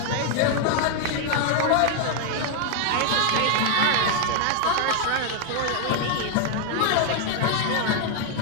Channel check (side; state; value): both; different; correlation 0.00